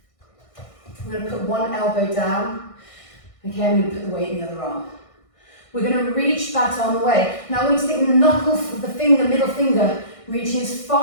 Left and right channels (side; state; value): right; late; 1.6 ms